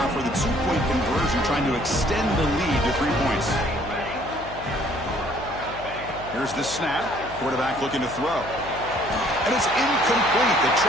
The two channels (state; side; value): noise; left; hum, 14 dB below the sound